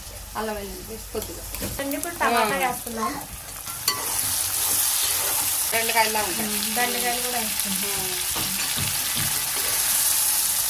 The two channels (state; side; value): identical; both; correlation 1.00